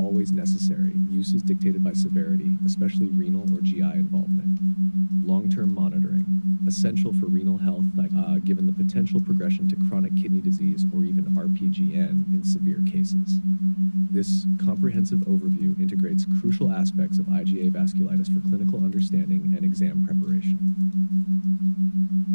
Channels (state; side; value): inverted; both; correlation -1.00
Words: necessary. Use is dictated by severity, especially renal or GI involvement. Long-term monitoring: essential for renal health, given the potential progression to chronic kidney disease or even RPGN in severe cases. This comprehensive overview integrates crucial aspects of IgA vasculitis for clinical understanding and exam preparation.